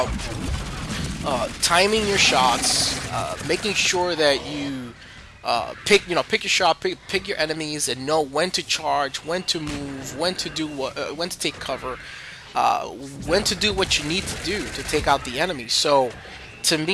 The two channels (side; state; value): both; identical; correlation 1.00